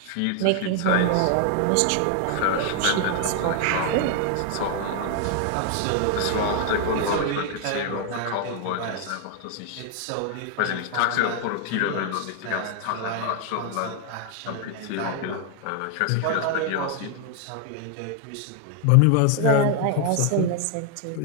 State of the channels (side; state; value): both; different; correlation 0.00